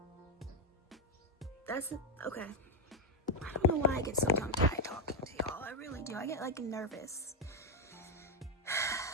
that's okay. I don't know why I get so tongue-tied talking to y'all. I really do. I get like nervous.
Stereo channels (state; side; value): normal; both; correlation 0.02